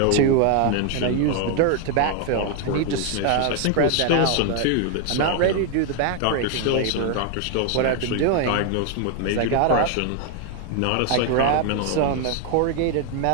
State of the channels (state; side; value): different; both; correlation 0.00